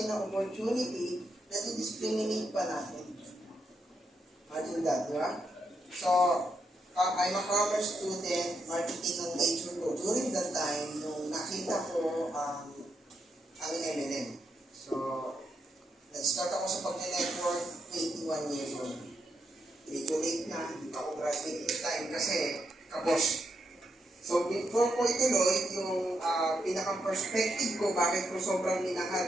ng opportunity, na-discriminate pa natin. Imagine that, di ba? So, I'm a commerce student, marketing ang major ko. During that time, nung nakita ko ang MLM. So, nag-start ako sa pag-network 21 years old. Medyo late na, hindi pa ako graduate this time kasi kabos. So, before ko ituloy, yung pinaka-perspective ko, bakit ko sobrang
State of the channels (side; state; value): both; normal; correlation 0.81